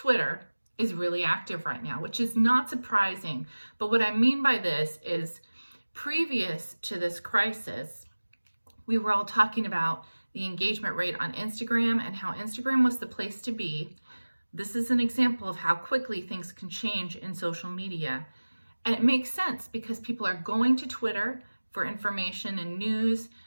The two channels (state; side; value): inverted; both; correlation -1.00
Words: is really active right now, which is not surprising. But what I mean by this is previous to this crisis, we were all talking about the engagement rate on Instagram and how Instagram was the place to be. This is an example of how quickly things can change in social media. And it makes sense because people are going to Twitter for information and news.